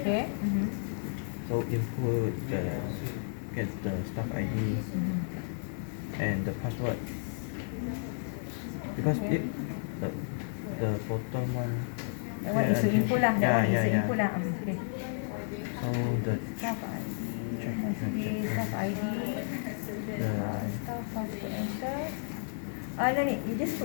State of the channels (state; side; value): silent; right; digital silence